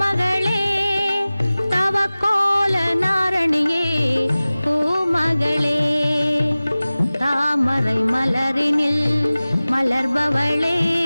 தவக்கோல நாரணியே பூமகளே. தாமரை மலரினில் மலர்பவளே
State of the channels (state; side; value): inverted; both; correlation -0.98